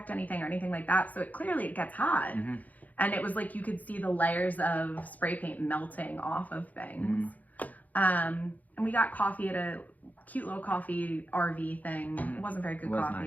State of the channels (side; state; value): right; late; 0.079 ms